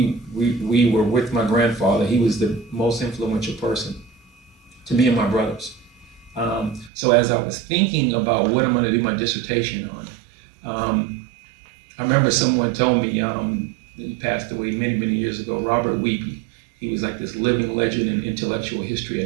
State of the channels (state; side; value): drops out; left; at 6.9 s